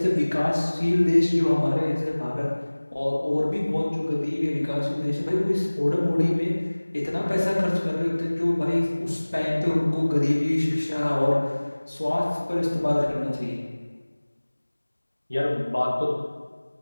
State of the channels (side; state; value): both; inverted; correlation -1.00